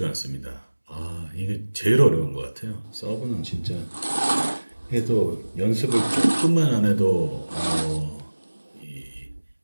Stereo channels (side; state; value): both; inverted; correlation -1.00